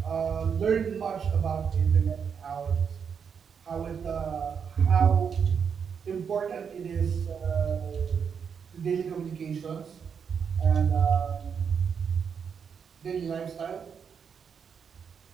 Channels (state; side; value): quieter; left; 6.8 dB